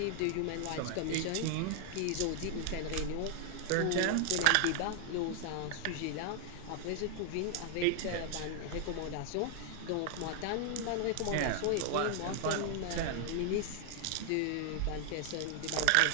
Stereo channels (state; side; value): different; both; correlation 0.00